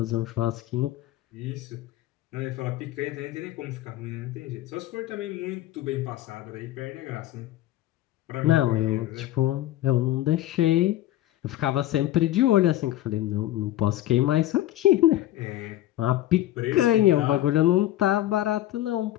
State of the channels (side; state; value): right; quieter; 14.3 dB